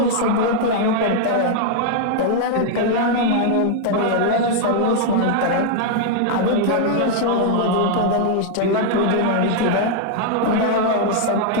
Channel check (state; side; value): different; both; correlation -0.01